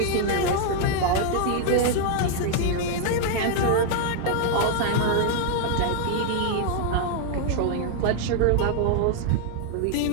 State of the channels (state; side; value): different; both; correlation 0.00